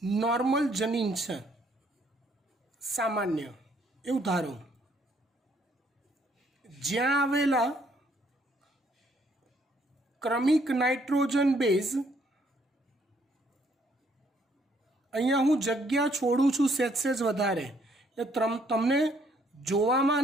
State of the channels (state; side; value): normal; both; correlation 0.67